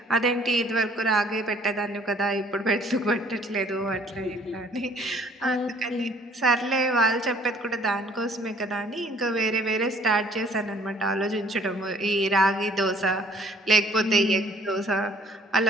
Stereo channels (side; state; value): both; normal; correlation 0.58